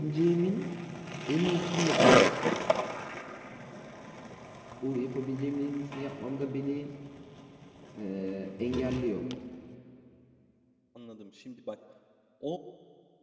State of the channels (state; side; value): identical; both; correlation 1.00